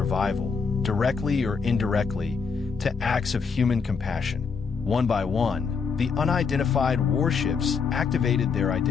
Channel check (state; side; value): quieter; right; 5.5 dB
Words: directly or indirectly, to acts of human compassion. One by one, the unidentified warships activated their